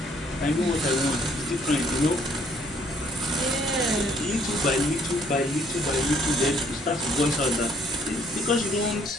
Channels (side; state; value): both; normal; correlation 0.64